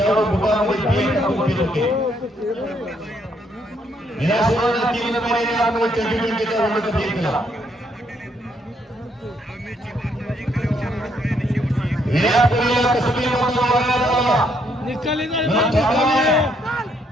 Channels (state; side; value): normal; both; correlation 0.72